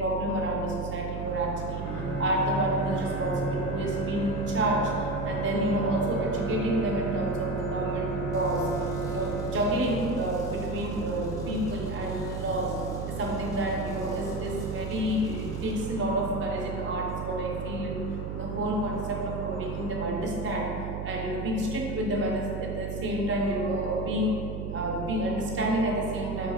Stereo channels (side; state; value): right; noise; hum, 4 dB below the sound